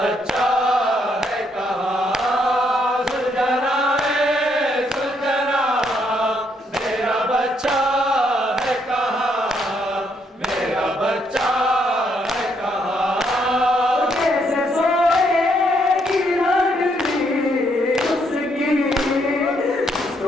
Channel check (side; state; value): both; normal; correlation 0.73